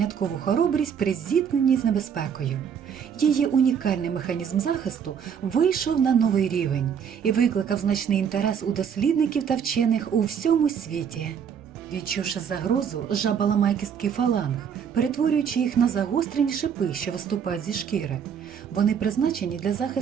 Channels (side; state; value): left; quieter; 7.6 dB